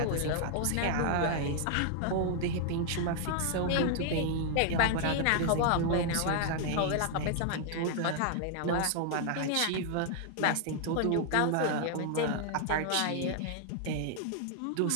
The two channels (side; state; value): both; different; correlation 0.00